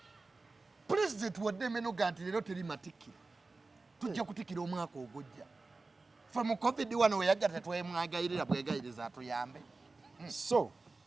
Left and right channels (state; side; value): quieter; left; 3.6 dB